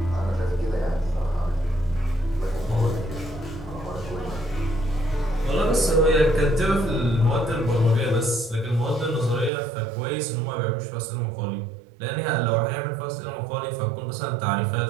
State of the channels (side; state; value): left; drops out; at 9.5 s